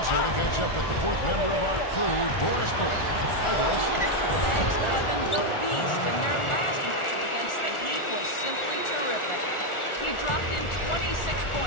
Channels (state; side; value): late; right; 1.4 ms